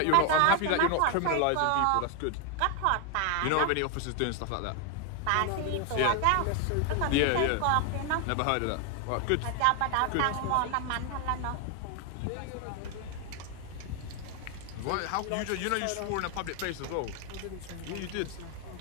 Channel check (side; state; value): both; different; correlation 0.01